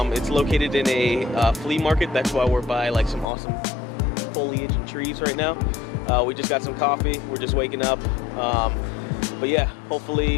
It's located in a flea market. That's why we're by like some awesome foliage and trees right now. We just got some coffee. We're just waking up. But yeah,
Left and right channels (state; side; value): drops out; right; at 3.2 s